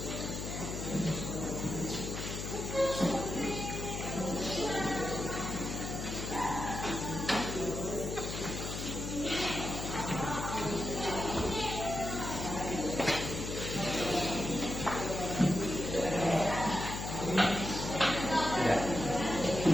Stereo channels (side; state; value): left; noise; hum, 5 dB below the sound